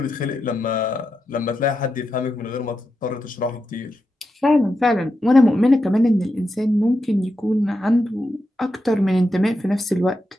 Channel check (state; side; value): normal; both; correlation 0.87